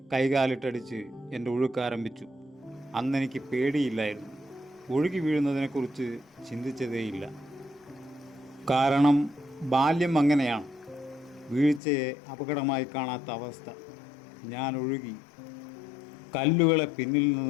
കൈകാലിട്ടടിച്ച് എൻ്റെ ഒഴുക്കാരംഭിച്ചു. അന്നെനിക്ക് പേടിയില്ലായിരുന്നു. ഒഴുകി വീഴുന്നതിനെക്കുറിച്ച് ചിന്തിച്ചതേയില്ല. കാരണം ബാല്യം അങ്ങനെയാണ്, വീഴ്ചയെ അപകടമായി കാണാത്ത അവസ്ഥ. ഞാൻ ഒഴുകി. കല്ലുകളെ പിന്നിൽ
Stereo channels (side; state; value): right; drops out; at 11.8 s